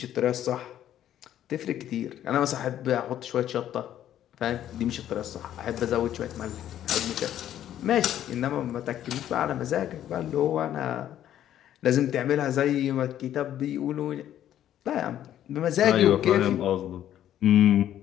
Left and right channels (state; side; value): quieter; right; 11.4 dB